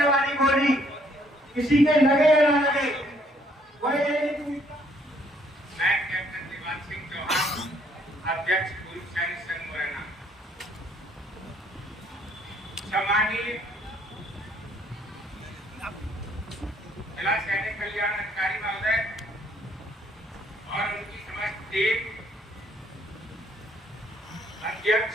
वाली गोली किसी के लगे या ना लगे। मैं कैप्टन दिवान सिंह चौहान, अध्यक्ष पूर्व सैनिक संघ मुरैना। सम्मानीय जिला सैनिक कल्याण अधिकारी महोदय और उनकी समस्त टीम,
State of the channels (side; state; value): both; normal; correlation 0.66